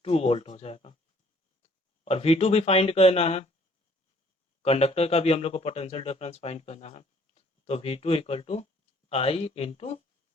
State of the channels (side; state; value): both; normal; correlation 0.60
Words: 2 वोल्ट हो जाएगा। और V2 भी फाइंड करना है, कंडक्टर का भी हम लोग को पोटेंशियल डिफरेंस फाइंड करना है। तो V2 equal to I into